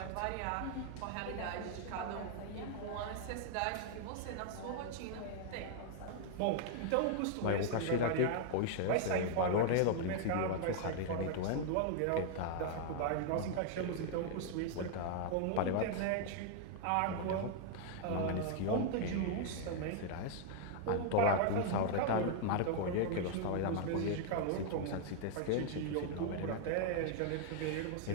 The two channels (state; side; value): different; both; correlation 0.00